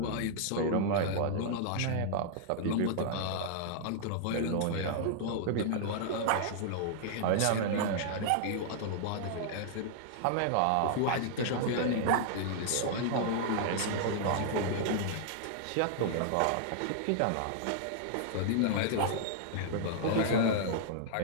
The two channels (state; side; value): different; both; correlation -0.01